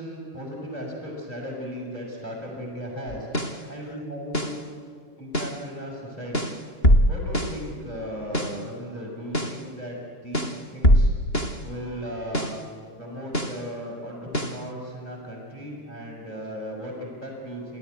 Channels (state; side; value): late; right; 2.9 ms